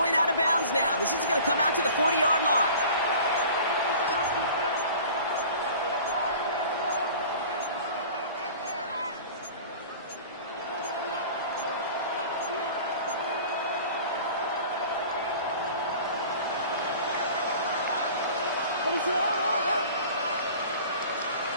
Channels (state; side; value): inverted; both; correlation -0.43